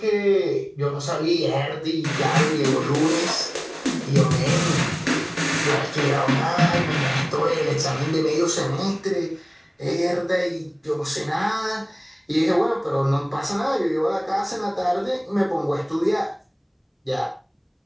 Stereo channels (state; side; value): identical; both; correlation 1.00